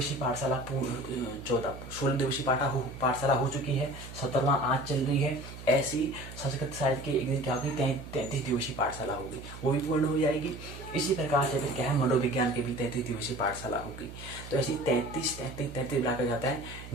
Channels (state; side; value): noise; right; hum, 13 dB below the sound